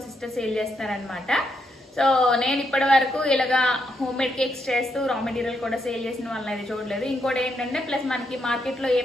సిస్టర్ సేల్ చేస్తారనమాట. సో నేను ఇప్పటి వరకు ఇలాగా హోమ్ మేడ్ కేక్స్ చేస్తూ రా మెటీరియల్ కూడా సేల్ చేసిన వాళ్ళని అయితే చూడలేదు. ఇంకోటి ఏంటంటే ప్లస్ మనకి మార్కెట్లో ఏ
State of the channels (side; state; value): both; normal; correlation 0.79